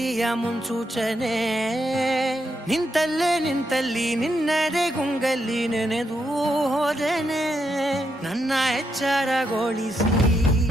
ಮುನ್ಸೂಚನೆ, ನಿಂತಲ್ಲಿ ನಿನ್ನದೇ ಗುಂಗಲ್ಲಿ ನೆನೆದು ಹೋದೆನೆ. ನನ್ನ ಎಚ್ಚರಗೊಳಿಸಿ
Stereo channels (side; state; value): both; normal; correlation 0.81